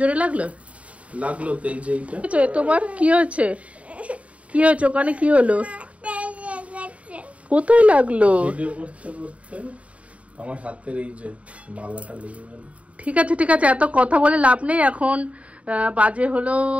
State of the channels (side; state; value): left; late; 0.065 ms